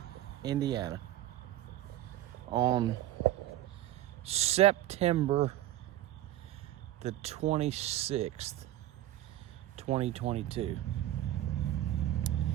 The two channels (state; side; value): quieter; left; 14.0 dB